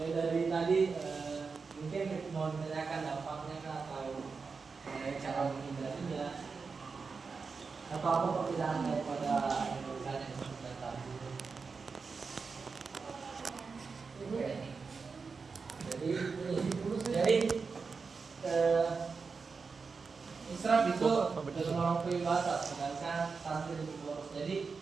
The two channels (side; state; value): left; quieter; 4.9 dB